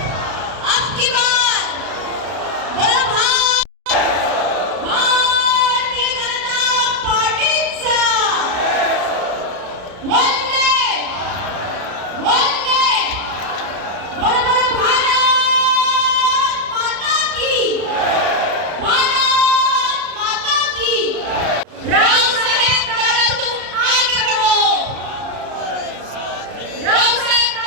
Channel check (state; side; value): late; left; 33 ms